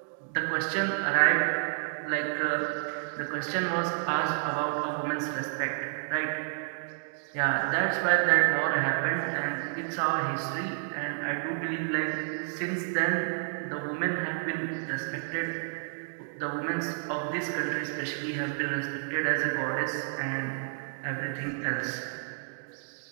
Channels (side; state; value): left; silent; digital silence